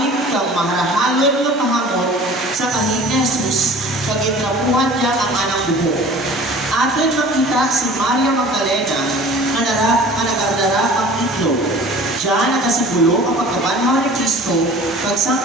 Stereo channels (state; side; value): normal; both; correlation 0.45